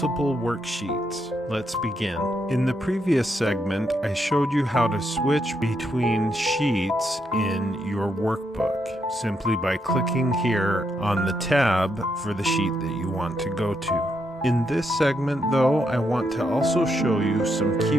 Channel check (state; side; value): normal; both; correlation 0.79